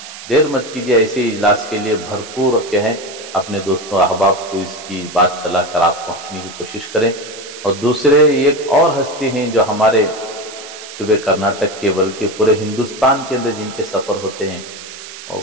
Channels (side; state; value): right; noise; hiss, 14 dB below the sound